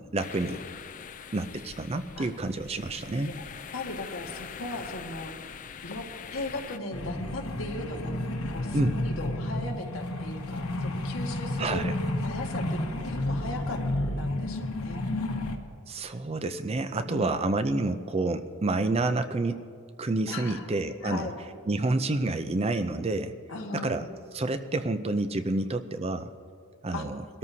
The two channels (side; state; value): both; normal; correlation 0.61